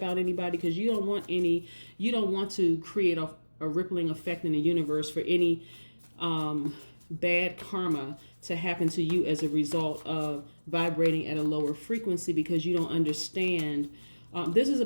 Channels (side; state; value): both; inverted; correlation -1.00